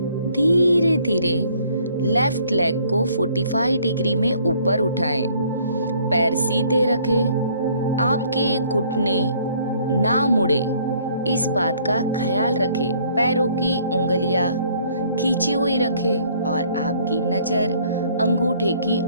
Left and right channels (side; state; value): both; inverted; correlation -0.61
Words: धीरे धीरे लेफ्ट लेग को 45 डिग्री में ऊपर उठाएं। पैर सीधे रखें। आपके घुटने ना मुड़े, इस बात का ख्याल रखें। पैरों की उंगलियां खींची हुई रखें और आपकी नजर अंगूठे की